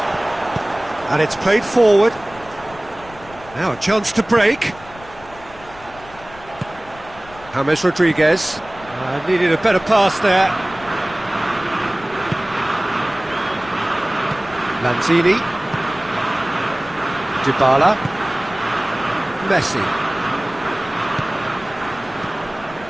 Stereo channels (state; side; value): noise; left; rumble, 20 dB below the sound